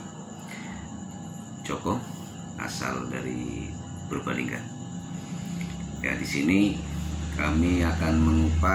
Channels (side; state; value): both; identical; correlation 1.00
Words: Joko, asal dari Purbalingga. Ya, di sini kami akan